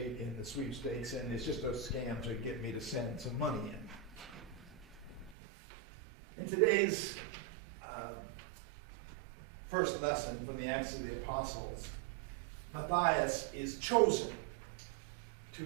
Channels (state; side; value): drops out; left; at 5.4 s